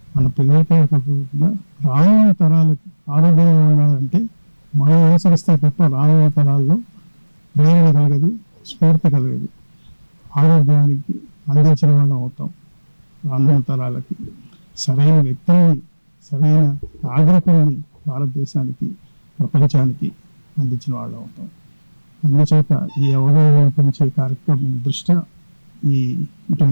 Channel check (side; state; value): both; inverted; correlation -1.00